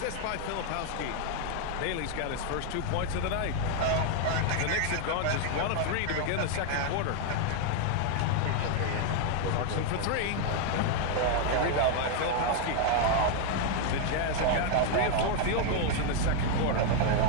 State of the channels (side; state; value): both; different; correlation 0.00